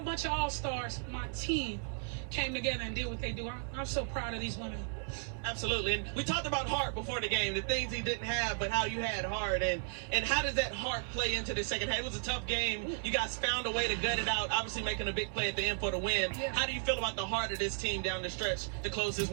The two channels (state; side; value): silent; left; 55 dB below the other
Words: bunch of all-stars, my team came together and did what they do. I'm so proud of these women. Absolutely. And we talked about heart before the game, the things he didn't have, but how you had heart. And how does that heart play into the second half? It was a tough game. You guys found a way to gut it out, obviously making a big play at the end for the win. Yeah. How do you feel about the heart of this team down the stretch to close this